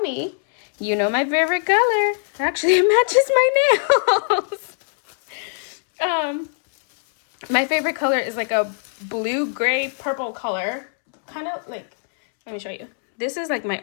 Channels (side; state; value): right; silent; 65 dB below the other